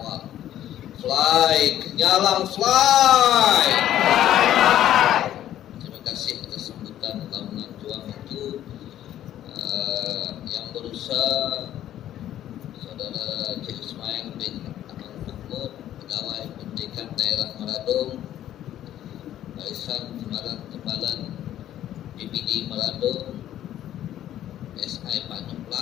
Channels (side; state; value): right; quieter; 12.0 dB